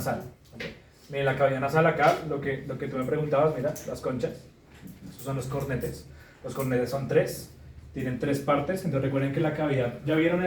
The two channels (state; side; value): identical; both; correlation 1.00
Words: ¿Vale? Miren la cavidad nasal acá, lo que tú me preguntabas, mira, las conchas. Estos son los cornetes. Los cornetes son 3. Tienen 3 partes. Entonces recuerden que la cavidad, ¿ya vieron